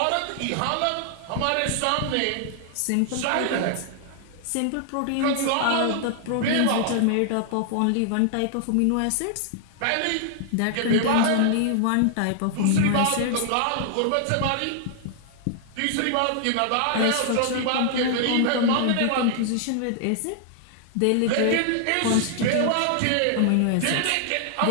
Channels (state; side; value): different; both; correlation -0.01